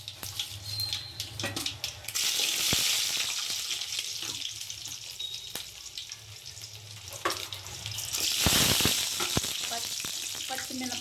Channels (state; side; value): identical; both; correlation 1.00